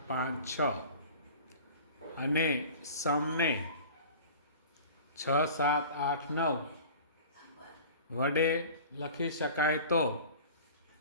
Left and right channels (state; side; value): inverted; both; correlation -0.41